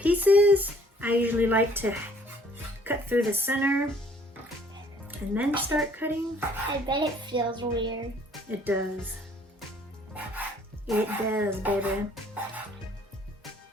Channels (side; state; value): both; normal; correlation 0.59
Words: I usually like to cut through the center and then start cutting. I bet it feels weird. It does. It does, baby.